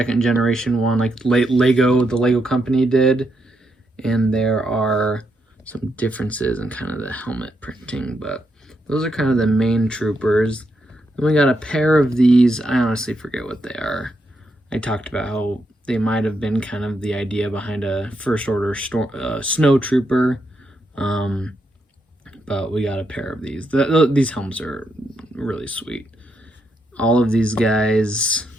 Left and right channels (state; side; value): normal; both; correlation 0.80